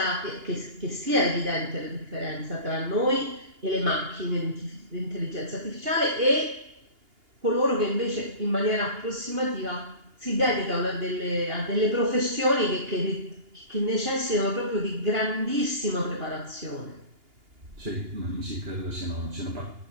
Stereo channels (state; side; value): late; left; 2.8 ms